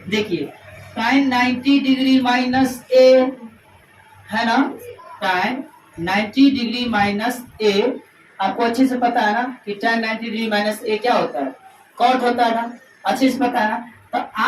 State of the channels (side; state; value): both; identical; correlation 1.00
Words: देखिए tan 90 डिग्री माइनस a, है ना, tan 90 डिग्री माइनस a, आपको अच्छे से पता है ना कि tan 90 डिग्री माइनस a क्या होता है, cot होता है ना, अच्छे से पता है ना। तो